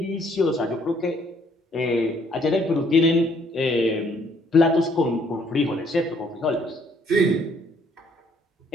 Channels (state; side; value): normal; both; correlation 0.65